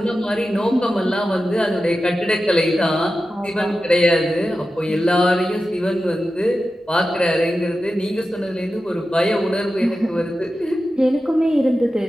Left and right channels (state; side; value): normal; both; correlation 0.92